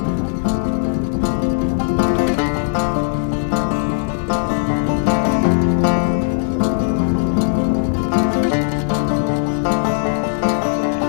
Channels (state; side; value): silent; right; 56 dB below the other